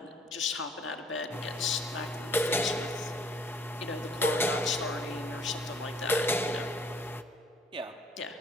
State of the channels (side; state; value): both; normal; correlation 0.58